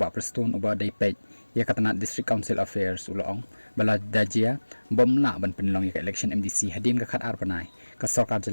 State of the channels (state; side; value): inverted; both; correlation -1.00